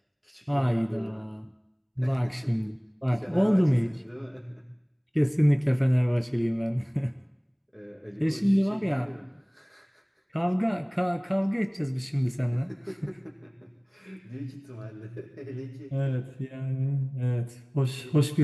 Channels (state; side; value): identical; both; correlation 1.00